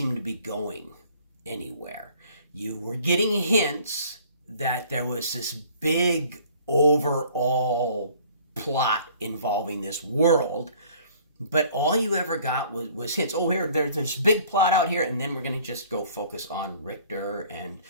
to be going anywhere. You were getting hints that there was this big overall plot involving this world, but all you ever got was hints. Oh, there's this big plot out here, and then we're going to just go focus on Richter and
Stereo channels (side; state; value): both; inverted; correlation -0.54